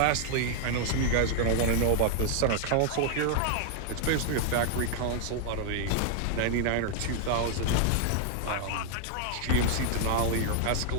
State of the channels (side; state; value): both; different; correlation 0.00